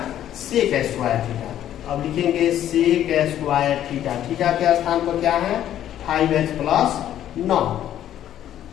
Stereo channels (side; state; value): right; quieter; 11.4 dB